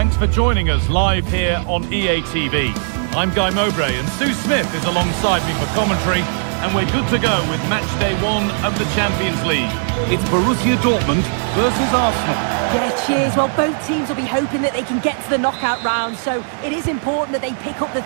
for joining us live here on EA TV. I'm Guy Mowbray and Sue Smith is alongside me for commentary, and we're good to go with match day 1 of the Champions League. It's Borussia Dortmund versus Arsenal. Yeah, cheers. Well, both teams will be hoping that they can get to the knockout round, so it is important that they pick up the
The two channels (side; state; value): left; silent; 58 dB below the other